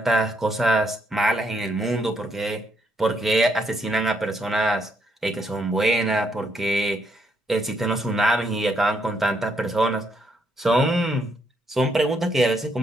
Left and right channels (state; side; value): normal; both; correlation 0.75